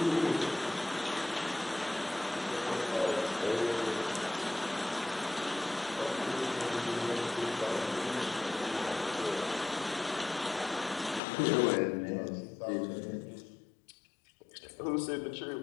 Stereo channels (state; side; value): drops out; right; at 11.2 s